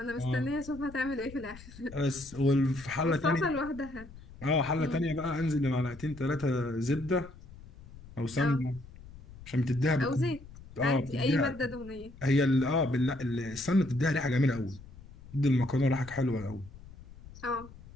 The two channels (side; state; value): left; noise; rumble, 18 dB below the sound